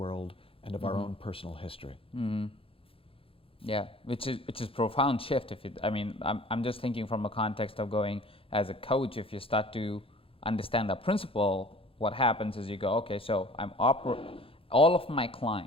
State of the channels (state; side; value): late; right; 0.27 ms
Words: and of our own personal history. Yeah, which is profound shift. I'm just thinking from a context of going as a coach. If you start to understand that principle, what happens is you go, okay, so all of my